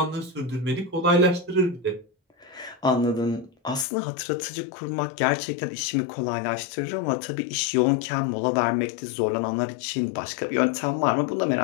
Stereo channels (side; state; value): right; drops out; at 3.9 s